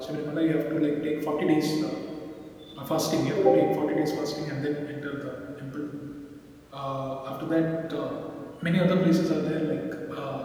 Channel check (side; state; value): both; identical; correlation 1.00